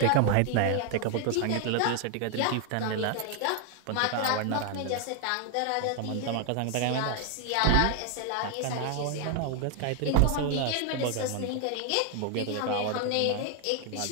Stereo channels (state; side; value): different; both; correlation 0.00